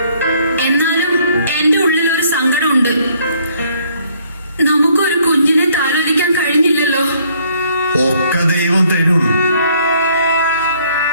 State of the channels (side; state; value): both; inverted; correlation -0.64